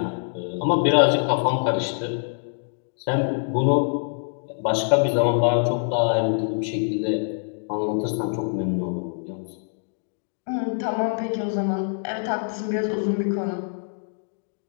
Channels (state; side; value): silent; right; digital silence